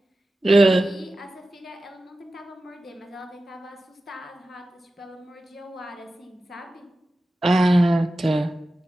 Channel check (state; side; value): normal; both; correlation 0.94